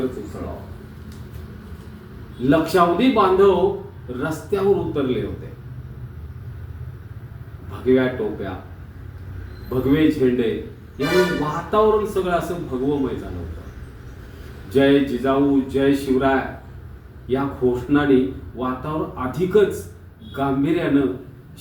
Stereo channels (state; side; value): identical; both; correlation 1.00